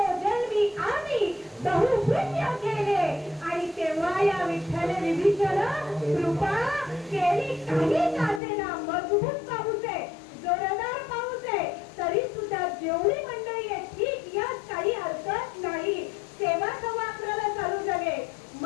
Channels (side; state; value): right; drops out; at 8.4 s